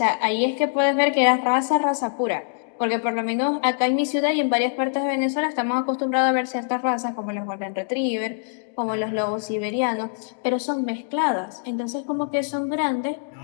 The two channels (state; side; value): silent; right; digital silence